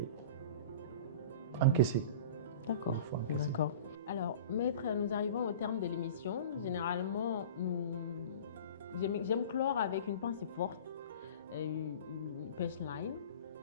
encaisser. D'accord. D'accord. Alors, Maître, nous arrivons au terme de l'émission. Généralement, j'aime clore avec une pensée forte, une punchline.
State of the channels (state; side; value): inverted; both; correlation -0.38